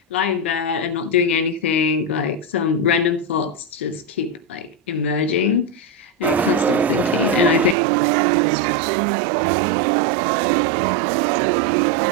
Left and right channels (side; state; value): left; drops out; at 7.8 s